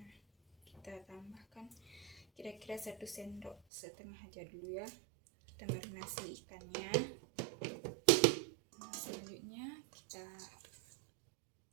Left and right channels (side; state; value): left; drops out; at 3.6 s